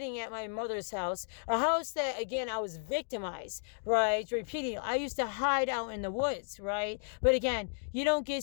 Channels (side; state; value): right; silent; digital silence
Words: at my mother's house, a house that, again, I was victimized, right? Repeating, I used to hide out in the woods, right? But again, you don't